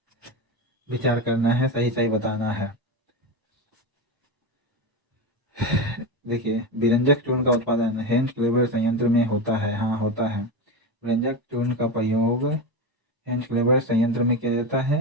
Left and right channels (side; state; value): left; late; 1.0 ms